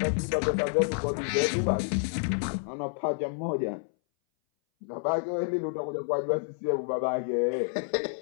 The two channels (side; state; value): right; silent; 59 dB below the other